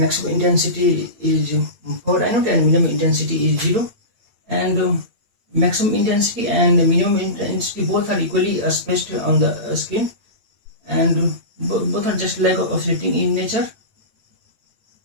intensity is 4 I naught and minimum intensity is 0, and maximum intensity and minimum intensity both are equally spaced on the screen, and both are just like oscillating in nature.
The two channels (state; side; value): late; left; 8.7 ms